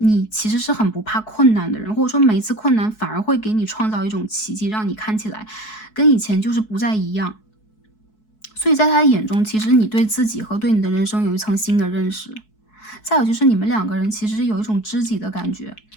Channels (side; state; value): right; late; 4.7 ms